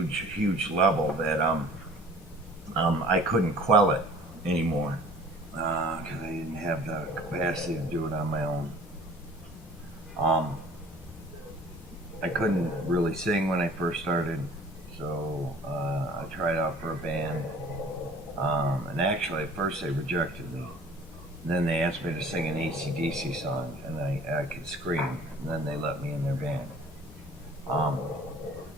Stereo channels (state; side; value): normal; both; correlation 0.49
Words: level that I couldn't quell it anymore because I didn't have the capacity to do it on my own. I couldn't really sing when I first started, so I tried out for a band, and actually at first they rejected me. Then they asked me to sing an AC/DC song, and I could scream, and then they let me in their band.